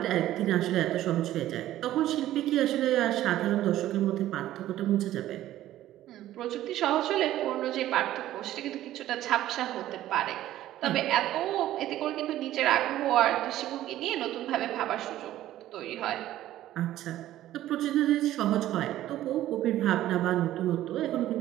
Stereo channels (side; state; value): left; quieter; 13.8 dB